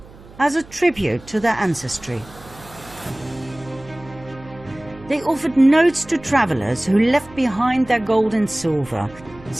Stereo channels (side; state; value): right; noise; hum, 21 dB below the sound